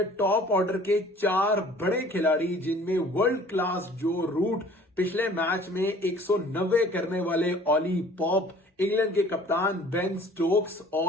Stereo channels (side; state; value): both; normal; correlation 0.51